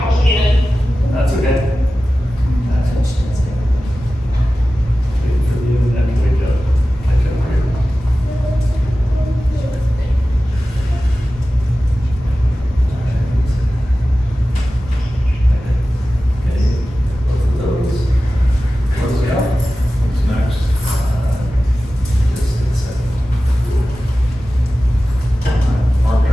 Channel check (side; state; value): both; normal; correlation 0.95